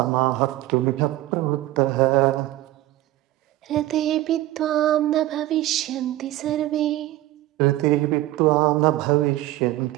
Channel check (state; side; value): quieter; left; 15.9 dB